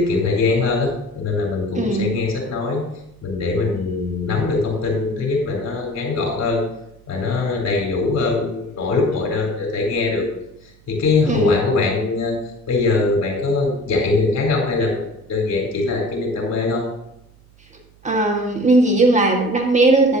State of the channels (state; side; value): noise; right; hum, 28 dB below the sound